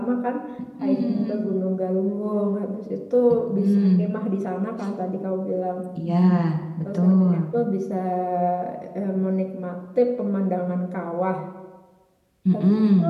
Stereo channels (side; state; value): both; identical; correlation 1.00